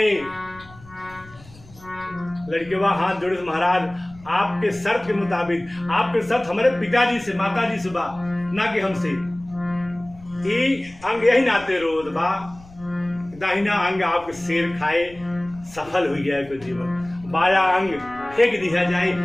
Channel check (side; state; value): left; noise; rumble, 22 dB below the sound